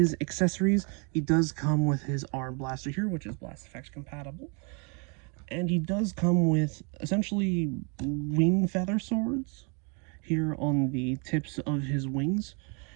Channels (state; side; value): quieter; left; 35.1 dB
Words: accessories, he does come with his arm blaster here, which is Blast Effects compatible. And he does come with essentially wing feather swords here on the tips of his wings